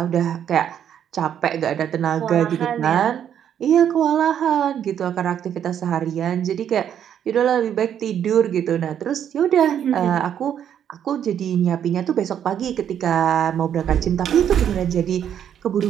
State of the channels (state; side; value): quieter; left; 9.3 dB